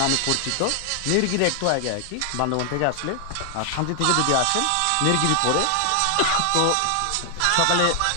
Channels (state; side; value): different; both; correlation 0.00